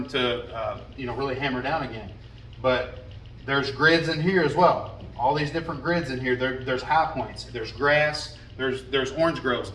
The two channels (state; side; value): identical; both; correlation 1.00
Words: to, really hammer down again. But there's grids in here as well. All these different grids in here. There's high points. There's grass. There's orange groves